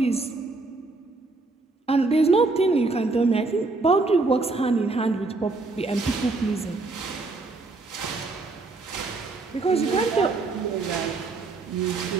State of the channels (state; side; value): quieter; left; 3.5 dB